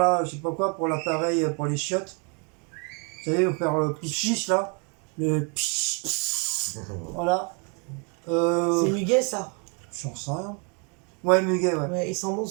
je sais pas quoi, pour l'appareil, pour les chiottes. Vous savez, vous faire le pichiche là. Le pichiche. Voilà. C'est muguet ça. J'en sais rien. Ouais, muguet, ouais. Ouais, il sent bon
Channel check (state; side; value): quieter; left; 35.8 dB